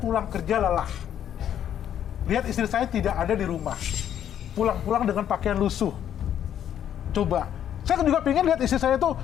kerja lelah. Lihat istri saya tidak ada di rumah. Pulang-pulang dengan pakaian lusuh. Coba. Saya juga pengen lihat istri saya tuh,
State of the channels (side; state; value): right; quieter; 10.0 dB